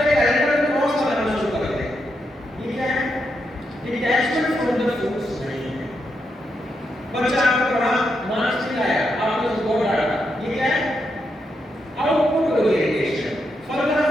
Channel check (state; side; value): normal; both; correlation 0.83